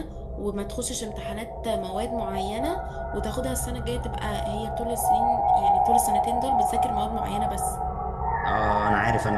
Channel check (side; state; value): both; identical; correlation 1.00